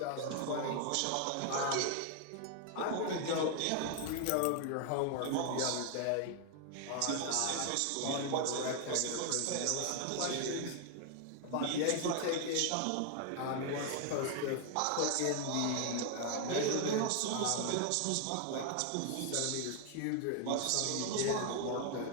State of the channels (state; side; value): different; both; correlation 0.00